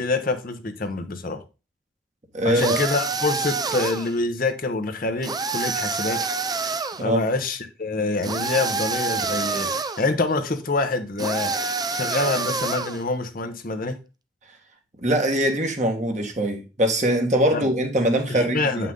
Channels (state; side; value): normal; both; correlation 0.30